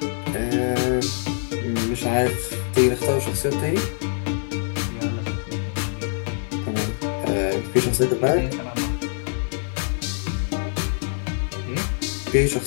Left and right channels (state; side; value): silent; right; 62 dB below the other